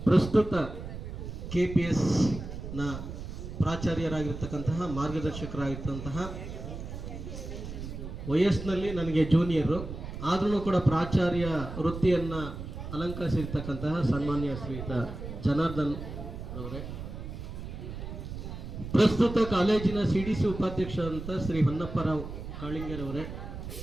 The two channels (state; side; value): noise; right; rumble, 8 dB below the sound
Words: ಪ್ರಸ್ತುತ KPSನ ಪ್ರಾಚಾರ್ಯರಾಗಿರ್ತಕ್ಕಂತಹ, ಮಾರ್ಗದರ್ಶಕರಾಗಿರ್ತಂತಹ, ವಯಸ್ಸಿನಲ್ಲಿ ನನಗೆ ಜೂನಿಯರು ಆದ್ರೂ ಕೂಡ ಪ್ರಾಚಾರ್ಯ ವೃತ್ತಿಯನ್ನು ಅಲಂಕರಿಸಿರ್ತಕ್ಕಂತಹ ಸನ್ಮಾನ್ಯ ಶ್ರೀಯುತ ಜನಾರ್ದನ್ ಅವರೇ, ಪ್ರಸ್ತುತ ಕಾಲೇಜಿನ CDC ಉಪಾಧ್ಯಕ್ಷರಂತ ಶ್ರೀ ಹೊನ್ನಪ್ಪರಾವ್ ಕಾಳಿಂಗರವರೇ,